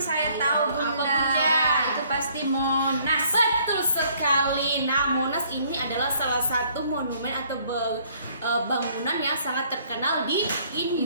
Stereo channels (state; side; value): inverted; both; correlation -0.62